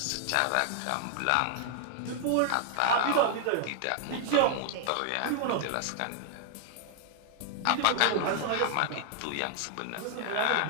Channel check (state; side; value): different; both; correlation -0.01